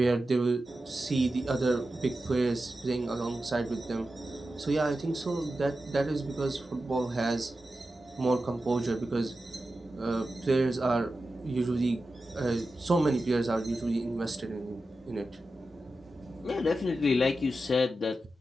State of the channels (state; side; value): normal; both; correlation 0.92